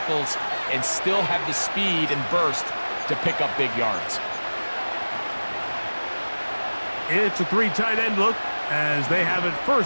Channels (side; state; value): both; inverted; correlation -1.00